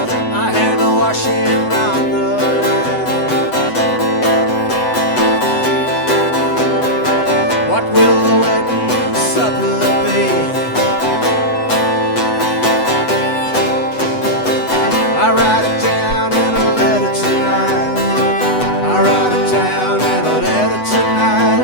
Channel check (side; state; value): right; late; 8.0 ms